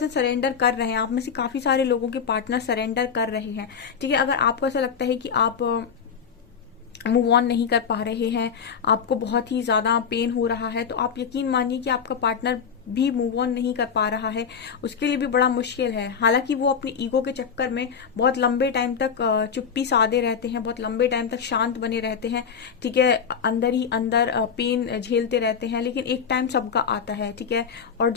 सरेंडर कर रहे हैं। आप में से काफी सारे लोगों के पार्टनर सरेंडर कर रहे हैं। ठीक है, अगर आपको ऐसा लगता है कि आप मूव ऑन नहीं कर पा रहे हैं, आपको बहुत ही ज्यादा पेन हो रहा है, तो आप यकीन मानिए कि आपका पार्टनर भी मूव ऑन नहीं कर पा रहा है, उसके लिए भी बड़ा मुश्किल है। हालांकि वो अपनी ईगो के चक्कर में बहुत लंबे टाइम तक चुप्पी साधे रहते हैं, बहुत लंबे टाइम तक शांत बने रहते हैं। ठीक है, अंदर ही अंदर पेन झेलते रहते हैं, लेकिन एक टाइम सबका आता है। ठीक है, और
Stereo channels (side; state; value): right; quieter; 6.7 dB